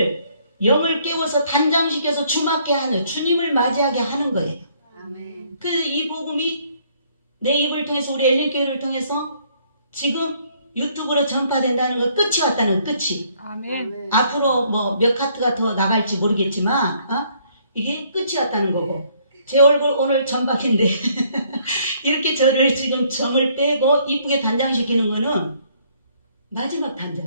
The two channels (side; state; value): both; inverted; correlation -0.65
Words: 영을 깨워서 단장시켜서 주맞게 하는 주님을 맞이하게 하는 거예요. 아멘. 그 이 복음이 내 입을 통해서 우리 엘리교회를 통해서 지금 유튜브로 전파된다는 건 끝이 왔다는 끝이. 아멘. 앞으로 뭐 몇 카트가 더 나갈지 모르겠지만 이게 끝이 왔다는 거고 제 얼굴 오늘 점박인데 이렇게 저를 지금 점을 빼고 이쁘게 단장시키는 거는 마지막